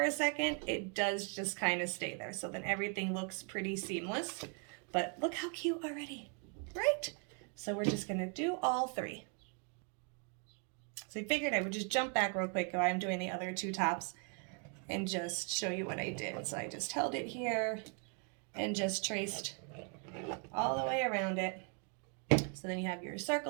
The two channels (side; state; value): left; quieter; 38.9 dB